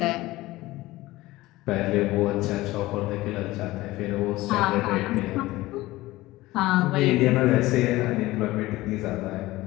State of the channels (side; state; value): right; quieter; 18.4 dB